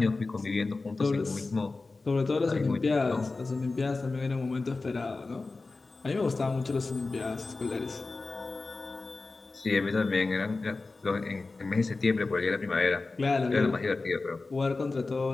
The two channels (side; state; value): right; quieter; 3.6 dB